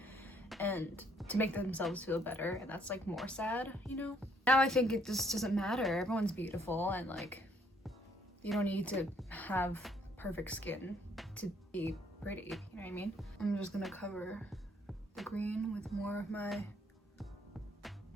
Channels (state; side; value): normal; both; correlation 0.66